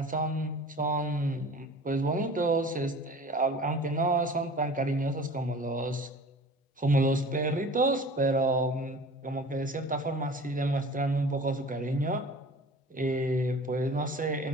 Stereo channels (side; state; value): both; normal; correlation 0.42